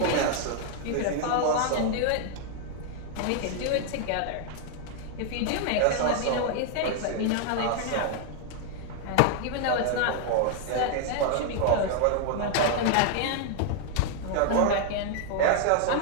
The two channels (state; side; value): different; both; correlation 0.00